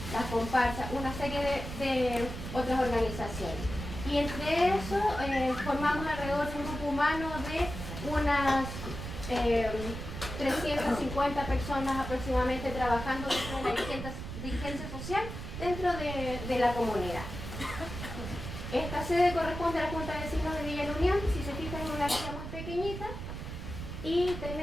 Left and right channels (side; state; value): right; noise; rumble, 8 dB below the sound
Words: las comparsas, una serie de otras organizaciones. Y entre eso formamos alrededor de un grupo humano de unas 350 personas aproximadamente trabajando dentro de la dirigencia social dentro de la comunidad. Esta sede corresponde a la Junta de Vecinos de Villa La Unión, si se fijan, en una villa muy pequeñita. Y